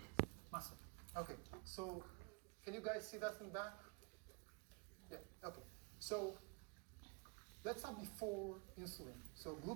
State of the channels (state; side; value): quieter; left; 34.0 dB